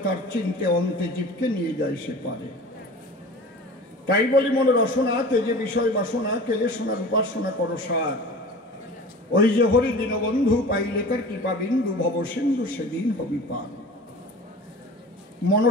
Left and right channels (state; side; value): normal; both; correlation 0.38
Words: তার চিনতে, অন্তে জীবকে নিয়ে যায় সে পারে। তাই বলি মন রসনা তেজে বিষয় বাসনা, কেলে সোনার উপাসনা করো সার। ওই যে হরি দীনবন্ধু পাইলে তার কৃপা বিন্দু, ভব সিন্ধু সেদিন হবি পার।